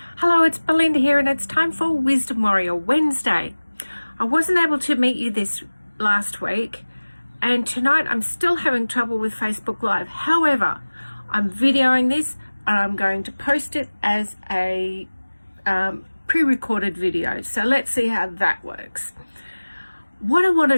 Hello, it's Belinda here, and it's time for Wisdom Warrior Wednesday. I wasn't able to meet you this last week, and tonight I'm still having trouble with Facebook Live. However, I'm videoing this and I'm going to post it as a pre-recorded video. So let's see how that works. What I want to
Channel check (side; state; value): both; inverted; correlation -1.00